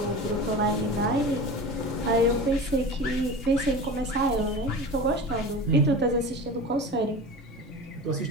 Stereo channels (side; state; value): both; normal; correlation 0.33